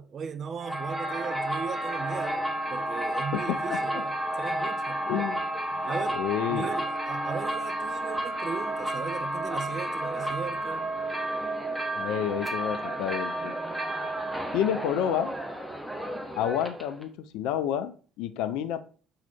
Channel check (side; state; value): both; normal; correlation 0.63